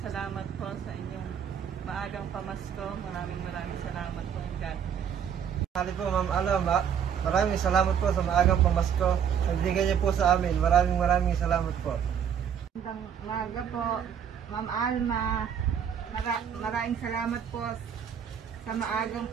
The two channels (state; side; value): quieter; left; 8.2 dB